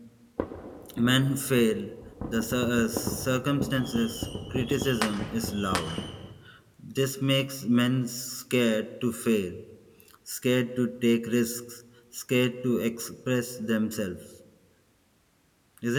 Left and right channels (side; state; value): both; identical; correlation 1.00